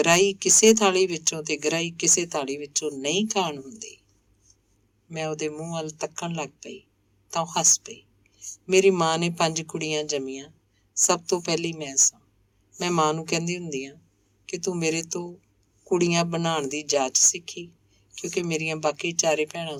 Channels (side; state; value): both; identical; correlation 1.00